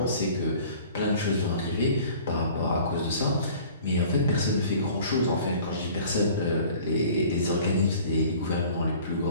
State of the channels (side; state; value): both; inverted; correlation -0.48